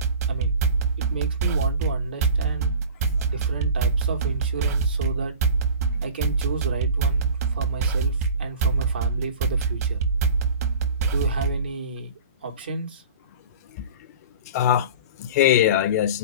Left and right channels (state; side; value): inverted; both; correlation -0.40